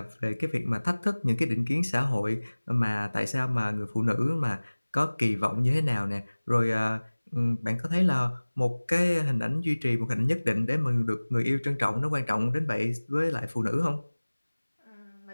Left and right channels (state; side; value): inverted; both; correlation -1.00